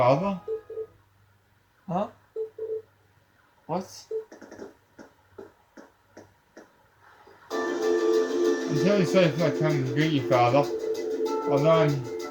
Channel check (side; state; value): both; identical; correlation 1.00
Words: Huh? What? I'm really sorry for not coming to greet you, father. Although